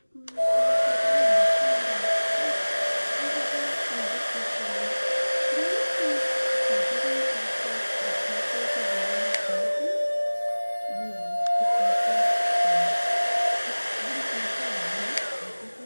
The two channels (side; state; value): both; inverted; correlation -1.00